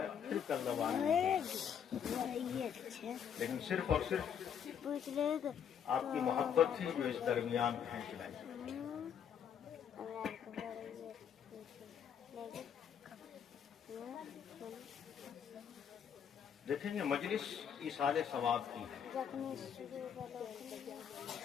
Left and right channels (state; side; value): quieter; right; 8.2 dB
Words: پھر کل روانہ. لیکن صرف اور صرف آپ کی محبت تھی جو اس درمیان کھینچ لائی. دیکھیں یہ مجلس ایصال ثواب کی ہے.